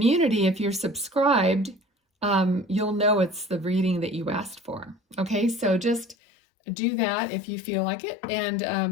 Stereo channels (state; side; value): drops out; right; at 6.2 s